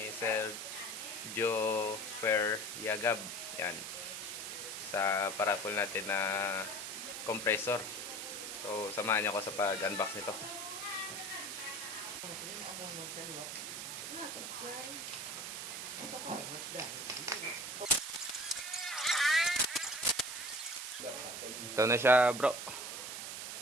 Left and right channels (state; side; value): noise; right; hiss, 6 dB below the sound